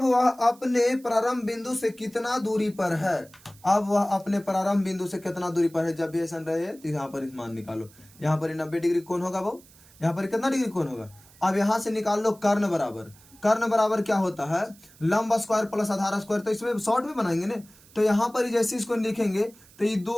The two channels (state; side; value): noise; right; hiss, 25 dB below the sound